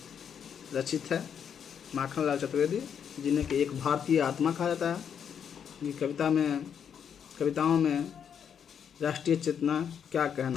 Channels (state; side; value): quieter; right; 7.9 dB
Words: रचित है। माखनलाल चतुर्वेदी, जिन्हें कि एक भारतीय आत्मा कहा जाता है। ये कविताओं में राष्ट्रीय चेतना, क्या